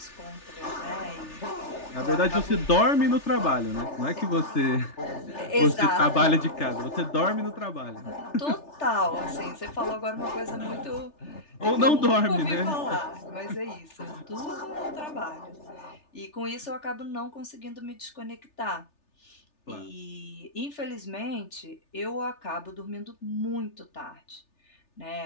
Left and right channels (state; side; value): late; right; 3.4 ms